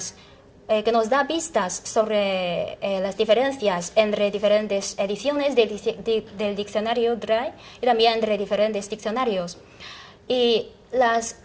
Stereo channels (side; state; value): both; identical; correlation 1.00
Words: que nos da pistas sobre las diferencias entre diferentes ediciones del diccionario DRAI y también entre diferentes diccionarios. Y